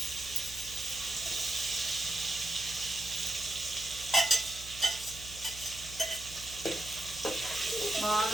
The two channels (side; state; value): right; noise; hum, 15 dB below the sound